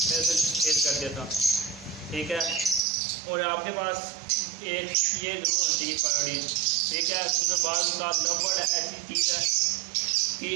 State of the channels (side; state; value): left; drops out; at 2.8 s